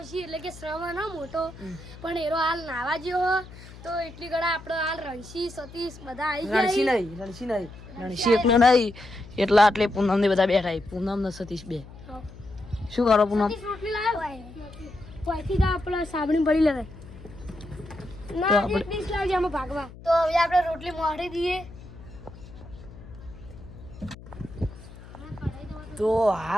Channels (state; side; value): noise; left; hum, 17 dB below the sound